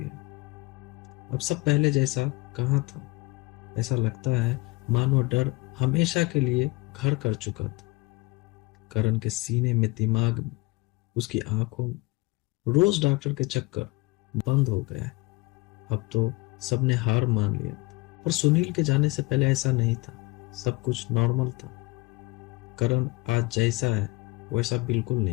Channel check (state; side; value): quieter; right; 23.7 dB